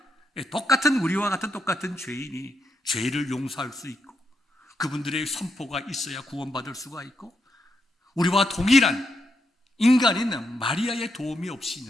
똑같은 우리와 같은 똑같은 죄인이 죄를 용서할 수 있고 그분들의 선포가 있어야 구원받을 수가 있고 우리와 동일한 인간인 마리아의 도움이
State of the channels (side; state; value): both; normal; correlation 0.81